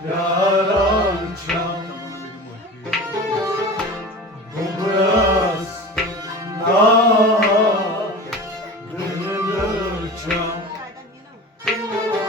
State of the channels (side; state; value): both; normal; correlation 0.35